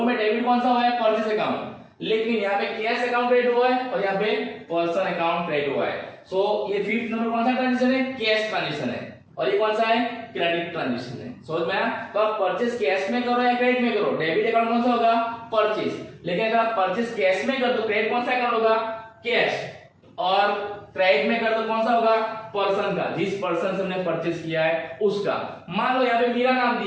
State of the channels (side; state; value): both; identical; correlation 1.00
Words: में डेबिट कौन सा हुआ है, परचेस अकाउंट। लेकिन यहाँ पे कैश अकाउंट क्रेडिट हुआ है और यहाँ पे पर्सन अकाउंट क्रेडिट हुआ है। सो ये 5th नंबर कौन सा ट्रांजेक्शन है, कैश ट्रांजेक्शन है, और ये कौन सा है, क्रेडिट ट्रांजेक्शन है। समझ में आया? तो आप परचेस कैश में करो या क्रेडिट में करो, डेबिट अकाउंट कौन सा होगा, परचेस। लेकिन अगर आप परचेस कैश में कर तो क्रेडिट कौन सा अकाउंट होगा, कैश, और क्रेडिट में कर तो कौन सा होगा, पर्सन का, जिस पर्सन से हमने परचेस किया है उसका। मान लो यहाँ पे मीरा नाम